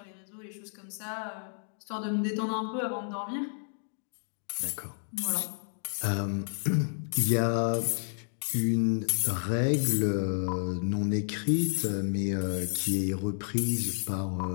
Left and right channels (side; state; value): right; silent; digital silence